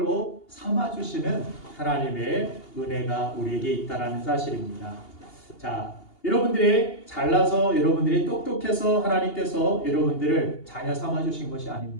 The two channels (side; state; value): right; late; 2.8 ms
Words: 삼아주시는 하나님의 은혜가 우리에게 있다라는 사실입니다. 자, 여러분들이 잘나서, 여러분들이 똑똑해서 하나님께서 여러분들을 자녀 삼아주신 것이